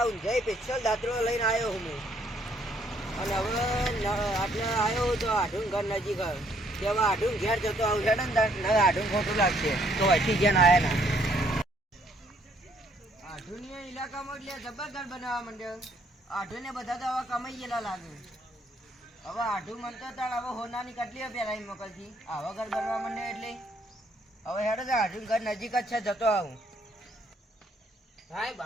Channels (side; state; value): both; normal; correlation 0.68